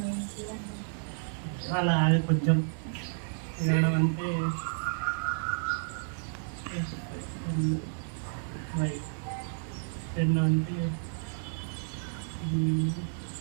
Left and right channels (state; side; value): silent; left; 57 dB below the other